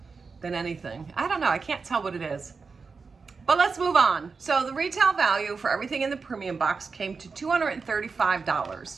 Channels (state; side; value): quieter; left; 4.8 dB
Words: than anything. I don't know. I can't tell what it is. But let's move on. So the retail value for everything in the premium box came to